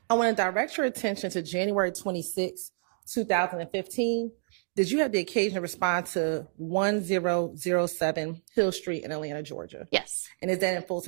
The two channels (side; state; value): left; silent; digital silence